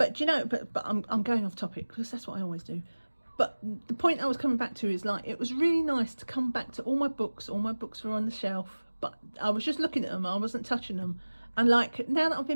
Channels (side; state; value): both; inverted; correlation -1.00